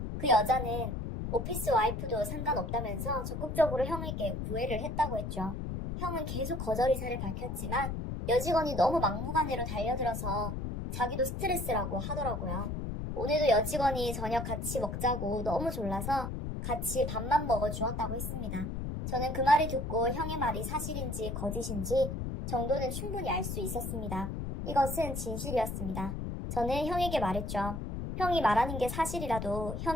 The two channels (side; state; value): left; noise; rumble, 4 dB below the sound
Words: 그 여자는 오피스 와이프도 상관없다면서 적극적으로 형에게 구애를 했다고 했죠. 형은 계속 거절 의사를 밝혔지만 여직원이 너무 막무가내로 달려들어서 자기도 스트레스라고 하더라고요. 오늘도 여직원이 저녁 같이 먹자고 너무 졸라서 같이 밥만 먹어 주었다고 했습니다. 저는 그 말을 듣고 형의 말이 사실인지 거짓인지 정도는 충분히 알 수 있었습니다. 이것은 진실이었습니다. 저는 형에게 말했죠. 형이 말하는 게 사실이라도